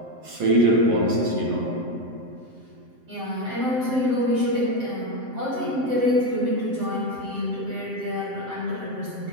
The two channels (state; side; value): late; left; 7.7 ms